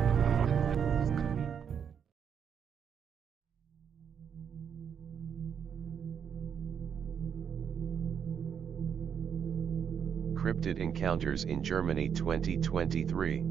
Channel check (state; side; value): quieter; left; 7.6 dB